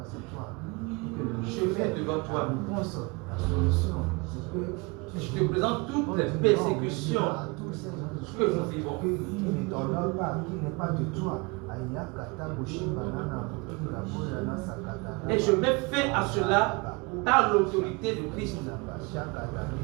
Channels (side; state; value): left; quieter; 28.0 dB